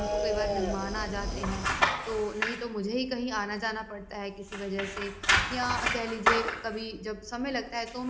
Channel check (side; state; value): both; identical; correlation 1.00